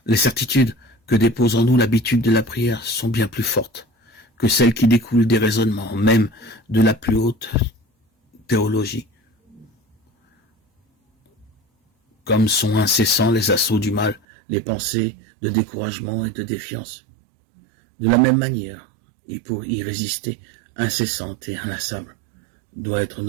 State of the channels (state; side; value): drops out; left; at 14.2 s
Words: Les certitudes que dépose en nous l'habitude de la prière sont bien plus fortes que celles qui découlent des raisonnements, même de la plus haute théologie. Comme sont incessants les assauts du mal, les pensées de découragement et de défiance. De la même manière, et pour y résister, incessante et inlassable, doit être